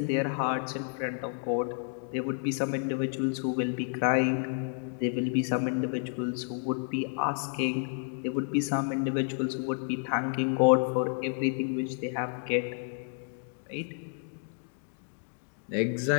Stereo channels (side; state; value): right; silent; 57 dB below the other